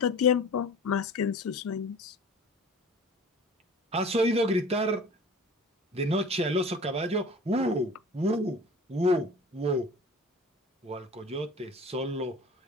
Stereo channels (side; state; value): both; normal; correlation 0.41